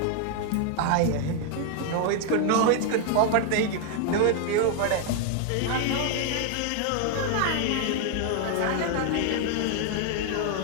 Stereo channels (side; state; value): both; different; correlation 0.00